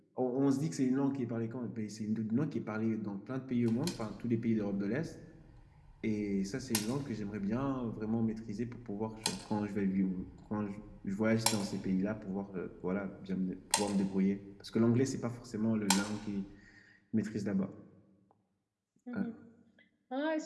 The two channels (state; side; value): identical; both; correlation 1.00